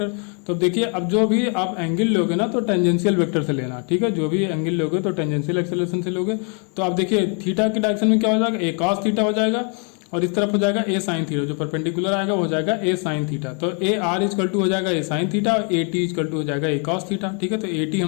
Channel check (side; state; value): right; quieter; 38.2 dB